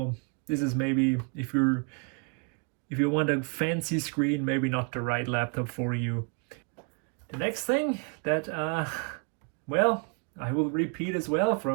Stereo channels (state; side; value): quieter; left; 34.5 dB